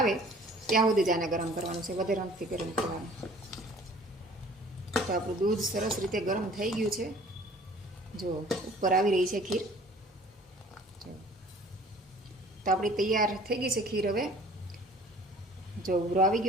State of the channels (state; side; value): normal; both; correlation 0.50